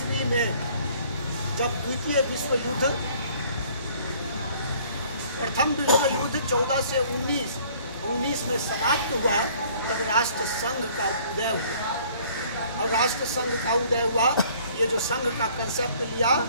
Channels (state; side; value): inverted; both; correlation -0.57